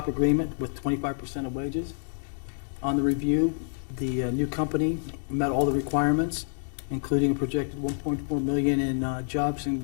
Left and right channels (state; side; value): silent; right; digital silence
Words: agreement with 25% of wages. On the review, the new company met all the requirements, including a projected 1.4 million in jobs